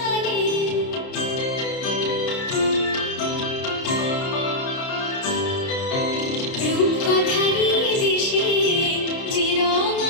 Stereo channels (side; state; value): right; late; 30 ms